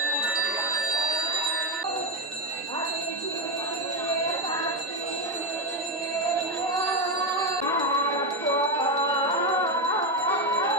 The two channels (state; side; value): normal; both; correlation 0.09